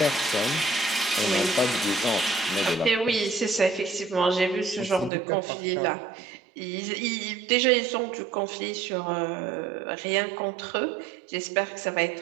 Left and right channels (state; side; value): drops out; left; at 5.1 s